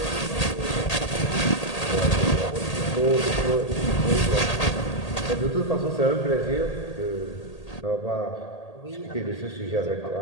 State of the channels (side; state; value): right; late; 1.8 ms